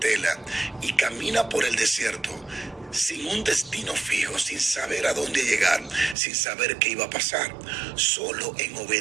y camina por el desierto sin un destino fijo, sin saber a dónde llegar, sin saber qué iba a pasar, solo en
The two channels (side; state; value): left; drops out; at 6.2 s